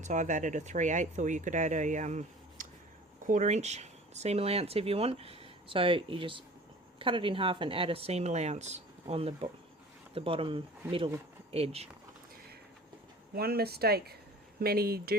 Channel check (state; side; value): normal; both; correlation 0.44